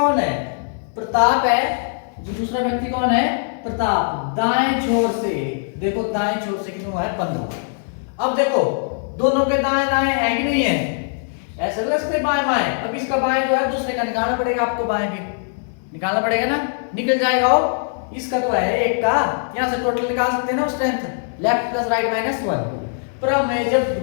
है? प्रताप है। जो दूसरा व्यक्ति कौन है? प्रताप। दाएं छोर से देखो, दाएं छोर से कितना है? 15। अब देखो दोनों के दाएं दाएं है कि नहीं है? ऐसे लगते बाएं बाएं। अब इसका बाएं जो है दूसरे का निकालना पड़ेगा आपको, बाएं भी निकालना पड़ेगा ना, निकल जाएगा। हो इसका तो है एक का, यहां से टोटल निकाल सकते हैं ना strength, left plus right minus 1। पर मैं जब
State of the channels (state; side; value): silent; right; 64 dB below the other